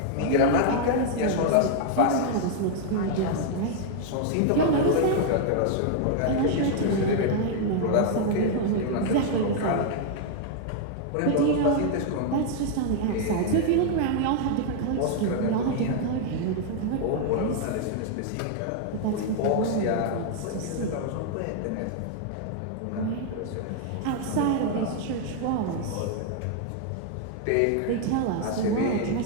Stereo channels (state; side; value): different; both; correlation 0.00